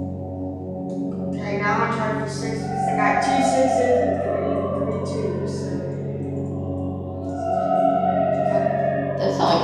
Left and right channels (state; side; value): identical; both; correlation 1.00